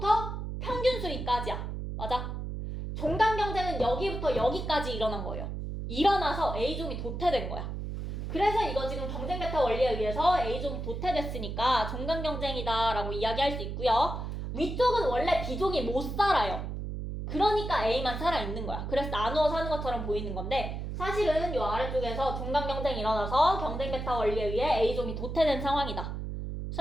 평균 수위까지야. 맞아? 종간 경쟁은 여기부터 여기까지 일어난 거예요. 일어나서 A종이 도태된 거야. 그래서 이거 지금 경쟁 베타 원리에 의해서 A종이 도태됐으니까 종간 경쟁이다 라고 이야기할 수 있고요. 위쪽은 원래 B종이 못 살아요. 그러니까 A만 살아있는 거야. 그래서 나누어 사는 것처럼 보이는 건데 사실은 이 아래쪽에서 종간 경쟁이 일어나서 경쟁 베타 원리에 의해 A종이 도태된 상황이다.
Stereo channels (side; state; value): right; noise; hum, 5 dB below the sound